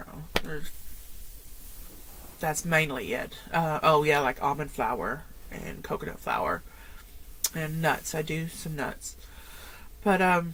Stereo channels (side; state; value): both; identical; correlation 1.00